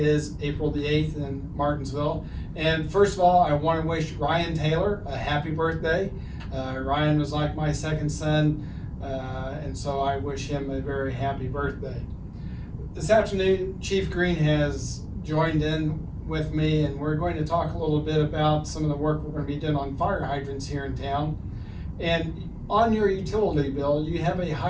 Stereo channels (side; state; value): both; identical; correlation 1.00